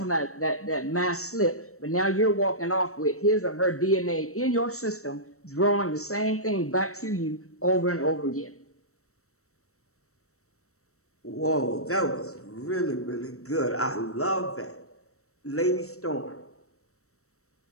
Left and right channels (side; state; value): right; late; 0.64 ms